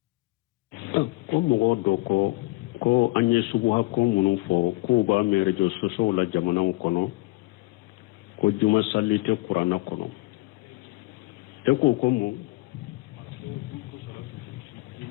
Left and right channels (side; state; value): right; quieter; 21.8 dB